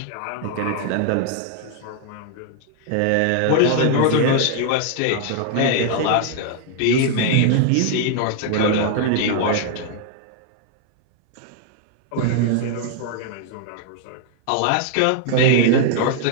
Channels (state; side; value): different; both; correlation 0.00